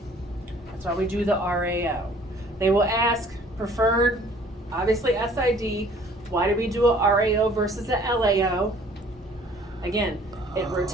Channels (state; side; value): normal; both; correlation 0.55